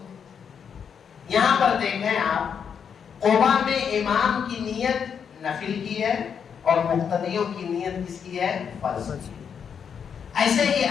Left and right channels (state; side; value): quieter; right; 7.2 dB